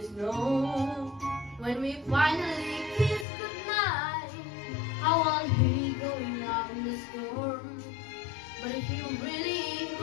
snow. When we finally kiss goodnight, how I'll be going out in the storm. But if you really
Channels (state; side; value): drops out; right; at 3.2 s